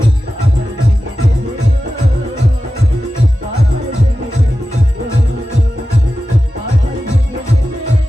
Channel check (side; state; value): both; normal; correlation 0.93